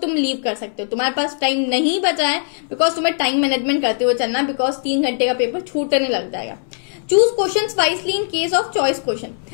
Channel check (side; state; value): right; silent; 66 dB below the other